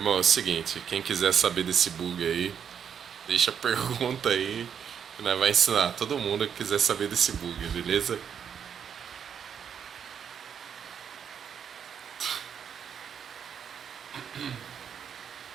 é o seguinte, quem quiser saber desse bug aí, deixa a pergunta aí que nós vai ensinar todo mundo que quiser saber desse bug, beleza?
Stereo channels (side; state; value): left; quieter; 7.8 dB